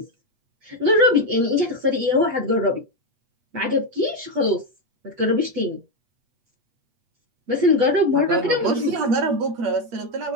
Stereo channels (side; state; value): left; late; 8.5 ms